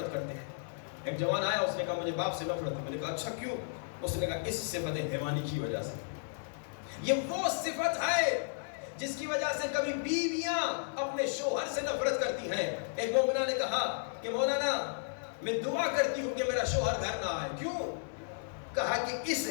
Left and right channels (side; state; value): right; silent; digital silence